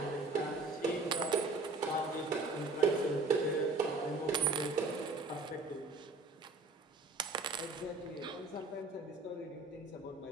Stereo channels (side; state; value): left; quieter; 3.4 dB